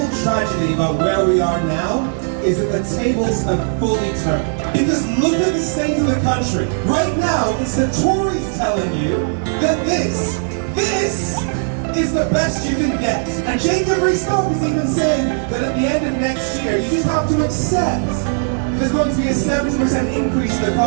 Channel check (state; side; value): silent; left; digital silence